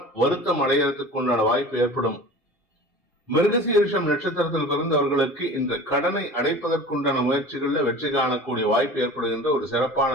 வருத்தம் அடைகிறதுக்கு உண்டான வாய்ப்பு ஏற்படும். மிருகசீரிஷம் நட்சத்திரத்தில் பிறந்தவர்களுக்கு இந்த கடனை அடைப்பதற்குண்டான முயற்சிகள்ல வெற்றி காணக்கூடிய வாய்ப்பு ஏற்படுகின்ற ஒரு சிறப்பான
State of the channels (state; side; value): normal; both; correlation 0.39